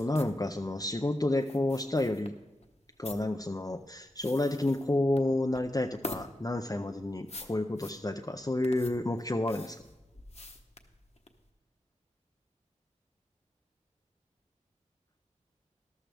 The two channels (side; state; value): both; normal; correlation 0.88